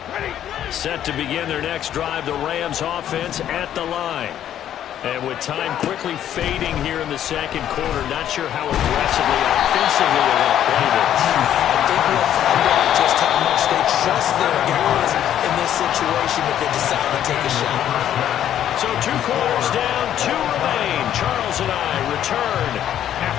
Set to begin their next drive, the Rams offense at the line. And with time quickly fading here in the second quarter, not sure how aggressively, offensively they're going to play this. I think we'll find out just how much they trust their guys in this situation if they decide to take a shot. So 2 quarters down, 2 remain. Charles and I return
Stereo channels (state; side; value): quieter; right; 10.8 dB